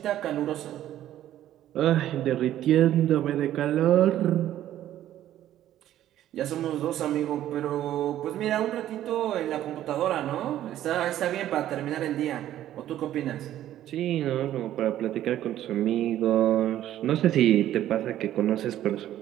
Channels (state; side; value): quieter; left; 12.5 dB